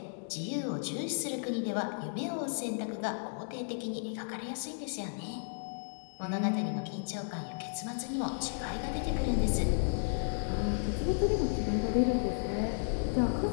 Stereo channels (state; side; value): silent; right; digital silence